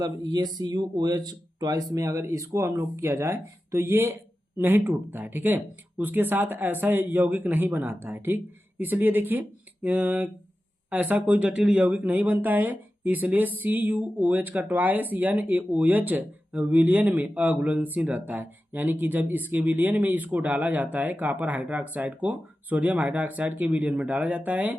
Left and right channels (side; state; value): both; normal; correlation 0.93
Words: ये CuOH ट्वाइस में अगर इसको हम लोग किया जाए तो ये नहीं टूटता है। ठीक है, उसके साथ ऐसा यौगिक नहीं बनाता है। ठीक, इसलिए देखिए ऐसा कोई जटिल यौगिक नहीं बनता है, इसलिए CuOH का ट्वाइस NaOH विलयन में अघुलनशील रहता है। यानी कि जब इसके विलयन में इसको डाला जाता है, कॉपर हाइड्रोक्साइड को सोडियम हाइड्रोक्साइड के विलयन में डाला जाता है,